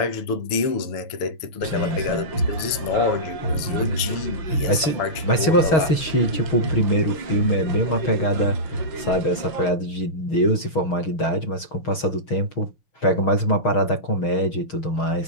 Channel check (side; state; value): right; late; 6.4 ms